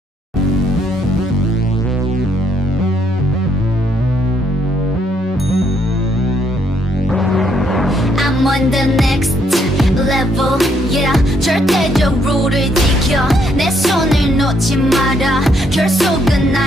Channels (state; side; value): normal; both; correlation 0.72